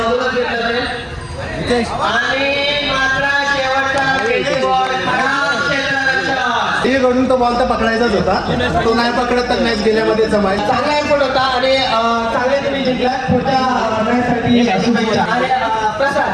कडून तो बॉल तर पकडायचाच होता, तो नाही पकडत तर मॅच गेल्यामध्ये जमाय. चांगला एफर्ट होता आणि चांगले तुम्ही जिंकला. पुढच्या प्रसाद,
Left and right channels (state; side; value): identical; both; correlation 1.00